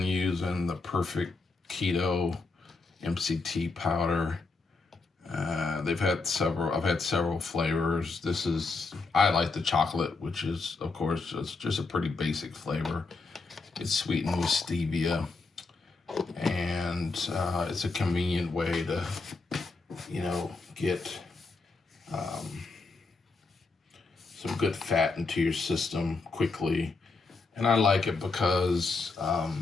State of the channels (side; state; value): right; quieter; 3.9 dB